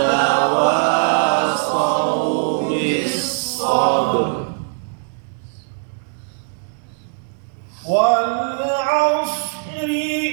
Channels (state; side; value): silent; left; digital silence